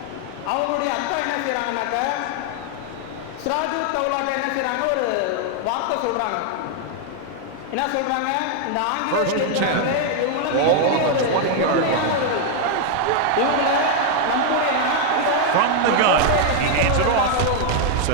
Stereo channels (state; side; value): different; both; correlation 0.00